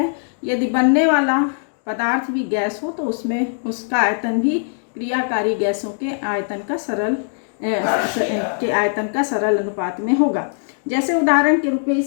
यदि बनने वाला पदार्थ भी गैस हो तो उसमें उसका आयतन भी क्रियाकारी गैसों के आयतन का सरल अनुपात में होगा। जैसे उदाहरण के रूप में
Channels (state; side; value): silent; right; digital silence